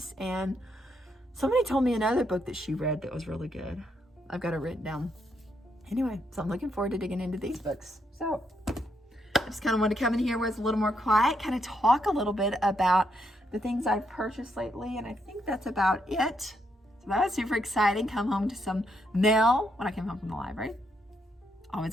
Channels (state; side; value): normal; both; correlation 0.77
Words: And somebody told me another book that she read that was really good. I've got it written down. Anyway, so I'm looking forward to digging into these books. So I just kind of wanted to come in here where it's a little more quiet, kind of talk a little bit about the things I've purchased lately. And I think that's about it. So that was super exciting. Come home to some mail when I came home from the library.